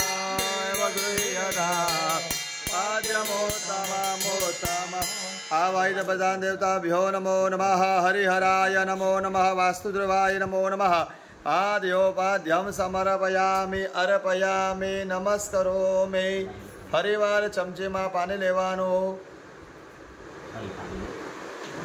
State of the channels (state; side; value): identical; both; correlation 1.00